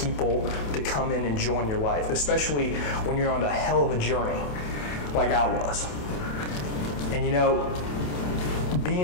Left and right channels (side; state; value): right; late; 28 ms